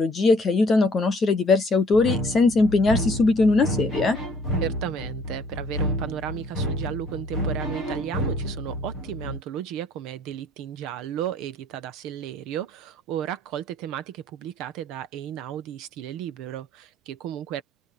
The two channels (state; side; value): normal; both; correlation 0.60